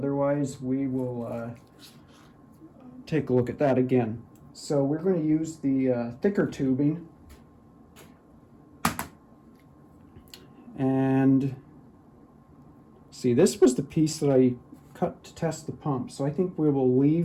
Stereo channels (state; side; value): identical; both; correlation 1.00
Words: we will take a look at that again. So we're going to use the thicker tubing. And see, this was the piece that I cut to test the pump. So I think we will